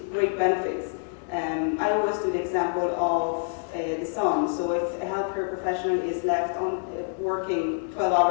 great benefits. I always do the example of the sun. So if a healthcare professional is left on working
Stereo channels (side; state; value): right; silent; 60 dB below the other